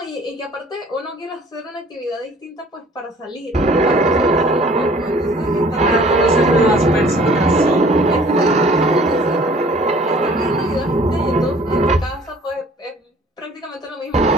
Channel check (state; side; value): normal; both; correlation 0.53